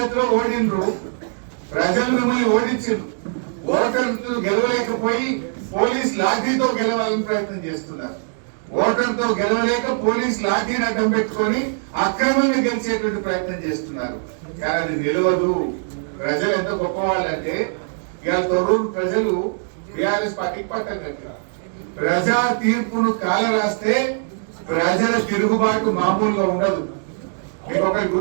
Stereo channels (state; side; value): silent; left; digital silence